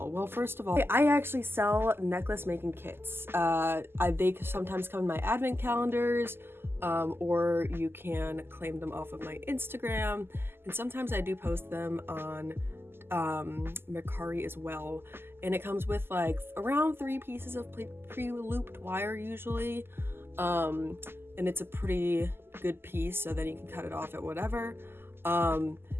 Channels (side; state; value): left; late; 0.11 ms